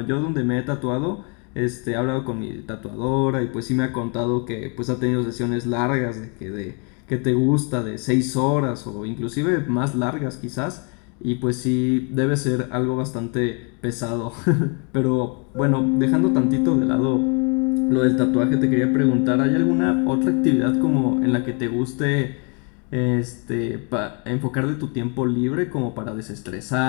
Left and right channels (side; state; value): right; quieter; 36.0 dB